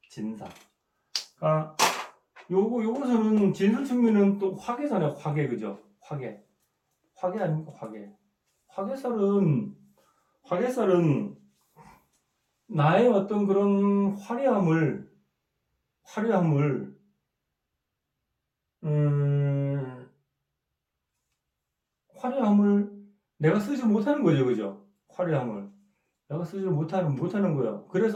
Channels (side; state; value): both; identical; correlation 1.00